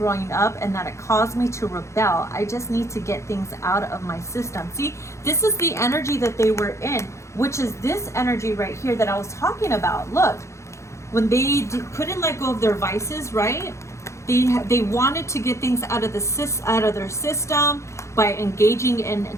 up, and that it caused me to rebel. I just need to get things out of my system. See, this is the energy that they were in, which is this energy right here that I was talking about. Look, when they couldn't let go of their vices, right? They wanted to get things out of their system by engaging in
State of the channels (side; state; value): right; late; 0.14 ms